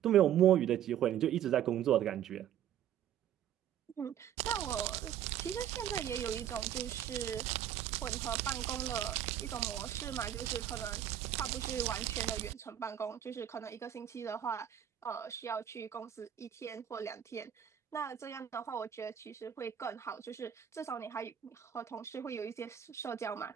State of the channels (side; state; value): left; quieter; 10.3 dB